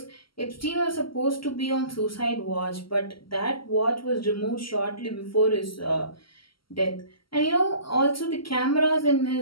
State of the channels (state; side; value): late; right; 0.74 ms